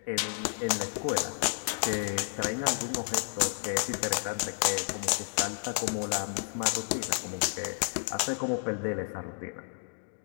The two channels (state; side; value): silent; right; digital silence